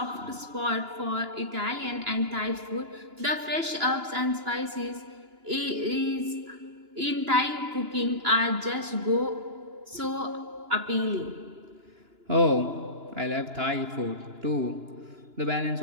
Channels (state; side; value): late; left; 2.9 ms